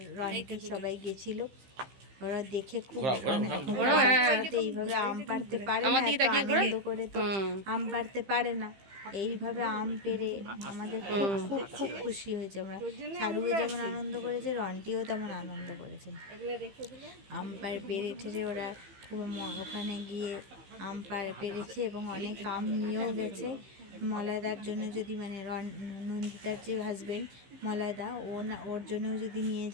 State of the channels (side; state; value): left; late; 15 ms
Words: রন্টি সবাই গেছিল। ওরা দেখে খুব ঘোরাও, এইভাবে আম পাড়তে পারে আমার না, দিকে এত তাকিয়ে ঘোরা। আনন্দ করে তো আম পাড়তে পারে না। এইভাবে আম পেড়ে আমাদের খুব খুব খুব খুশি হয়েছে আমরা। সারুও যেমন আনন্দ করেছে, রন্টিও তেমন আনন্দ করেছে। আম পেড়ে ওরা খুব ওখানে গিয়ে আম পেড়েছে এবং অনেক আম নিয়েও গেছে। মলয়দার জন্য যদি মানে নন্দিতার যে হাজবেন্ড মলয়দা, ও না ওর জন্যও যদি নিয়ে